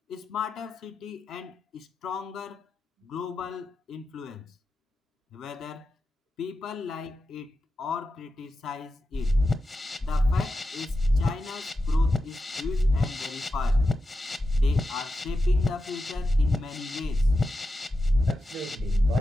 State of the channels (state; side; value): normal; both; correlation 0.90